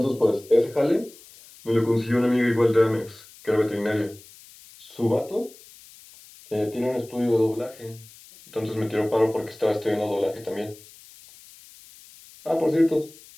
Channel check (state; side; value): noise; left; hiss, 22 dB below the sound